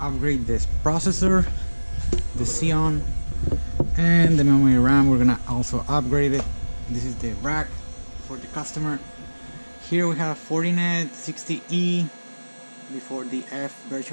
this processor, the Xeon, and the memory RAM. We're gonna also upgrade it. This is the rack for the customer. Here we have Fortinet 60E before the F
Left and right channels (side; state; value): both; inverted; correlation -1.00